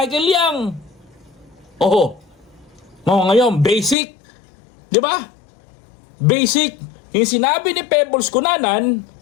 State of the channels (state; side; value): drops out; right; at 4.0 s